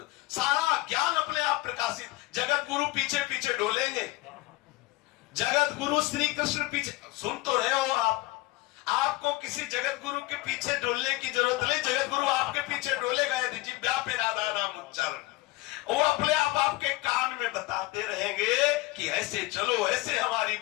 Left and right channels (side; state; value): right; quieter; 20.1 dB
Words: सारा ज्ञान अपने आप प्रकाशित। जगत गुरु पीछे पीछे डोलेंगे, जगत गुरु श्री कृष्ण पीछे, सुन तो रहे हो आप, आपको किसी जगत गुरु के पीछे डोलने की जरूरत नहीं। जगत गुरु आपके पीछे डोलेगा यदि जिह्वा पे राधा नाम उच्चारण, वो अपने आप आपके कान में बताते रहेंगे कि ऐसे चलो, ऐसे हमारी